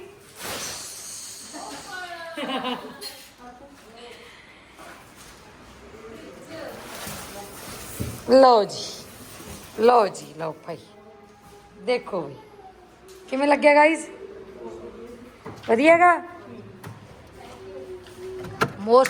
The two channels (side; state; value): both; identical; correlation 1.00